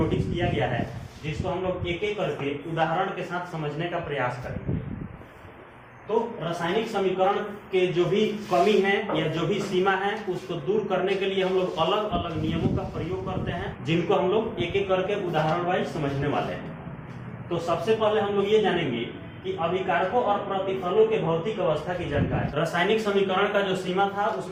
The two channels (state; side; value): identical; both; correlation 1.00